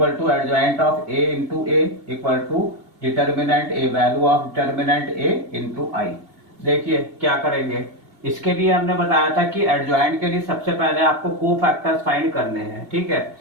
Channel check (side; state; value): left; late; 2.8 ms